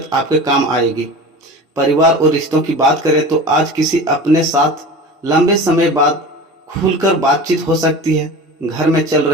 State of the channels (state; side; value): normal; both; correlation 0.34